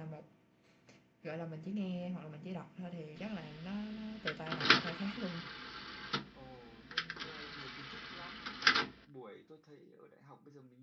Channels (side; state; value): both; identical; correlation 1.00